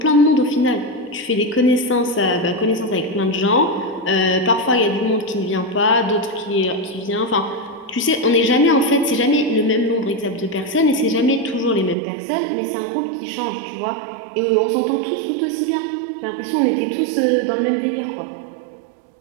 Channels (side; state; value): left; drops out; at 12.0 s